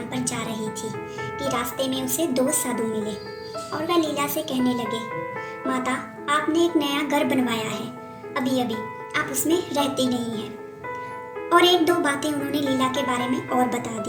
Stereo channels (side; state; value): both; identical; correlation 1.00